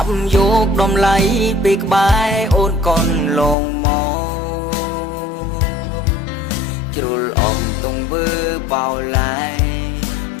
ប់យកដំឡៃពីក្បែរអូនកូនលងមកជ្រុលអងទងវើបោឡាយ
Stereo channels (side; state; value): right; drops out; at 3.6 s